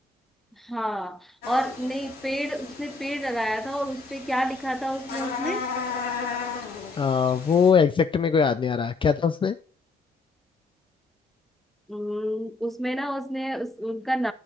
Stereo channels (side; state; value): right; quieter; 3.8 dB